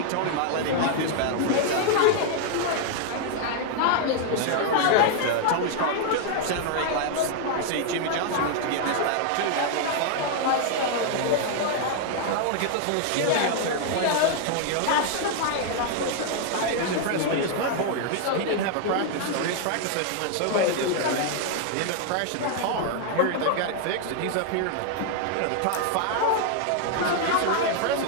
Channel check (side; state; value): both; different; correlation 0.00